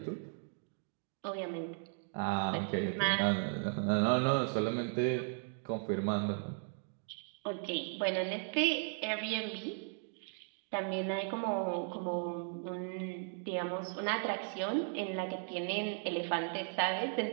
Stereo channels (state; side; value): silent; left; 53 dB below the other